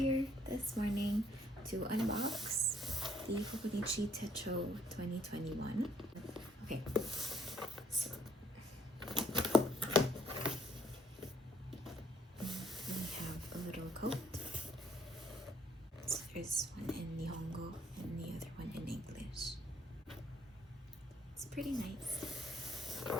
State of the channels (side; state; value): both; normal; correlation 0.66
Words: this morning to unbox the Hobonichi Techo 2021. Okay, so we have a little coat. So there's one in Nihongo and the other one in English. It's pretty nice.